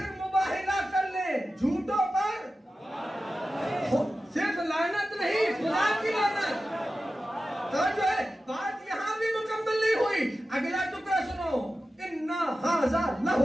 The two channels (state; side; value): normal; both; correlation 0.94